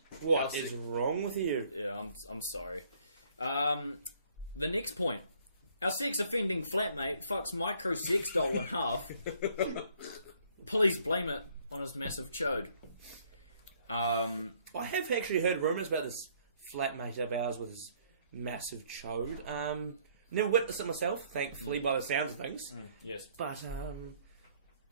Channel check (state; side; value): inverted; both; correlation -0.64